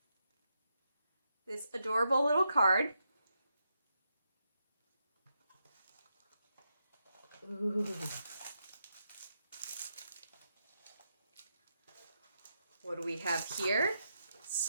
this adorable little card. Ooh. What do we have here?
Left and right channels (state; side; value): inverted; both; correlation -0.83